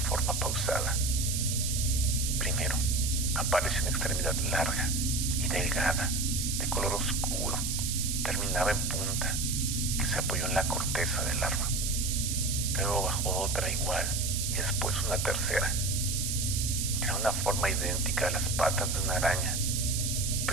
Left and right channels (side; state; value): right; noise; hiss, 1 dB below the sound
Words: pausada. Primero, apareció una extremidad larga y delgada, de color oscuro, terminaba en punta, que se apoyó en la corteza del árbol. Luego bajó otra igual y después una tercera. Era una forma idéntica a las patas de una araña,